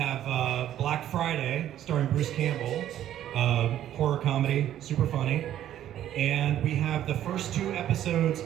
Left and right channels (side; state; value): left; quieter; 11.7 dB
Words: Black Friday, starring Bruce Campbell, horror comedy, super funny. And we have the first 2 episodes